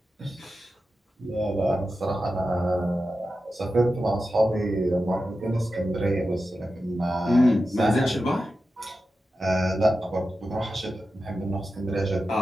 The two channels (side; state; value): both; normal; correlation 0.92